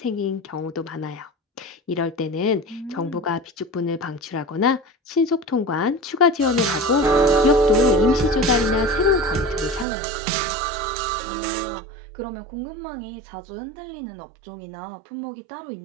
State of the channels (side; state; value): left; drops out; at 9.9 s